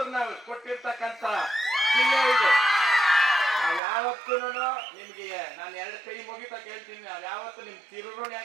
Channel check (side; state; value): left; drops out; at 3.8 s